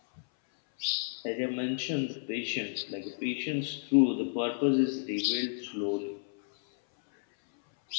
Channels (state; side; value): silent; right; 57 dB below the other